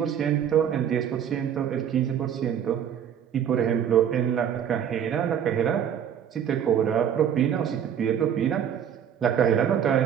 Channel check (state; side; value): quieter; left; 8.8 dB